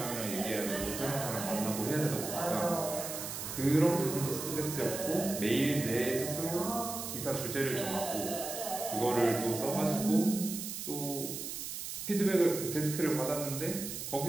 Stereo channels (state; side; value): noise; right; hiss, 6 dB below the sound